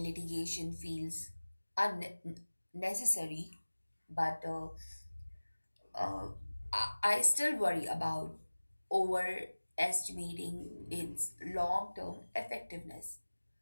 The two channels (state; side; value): inverted; both; correlation -1.00